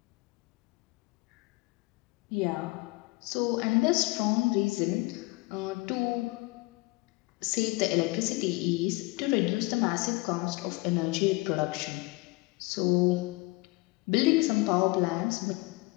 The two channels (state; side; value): quieter; right; 23.8 dB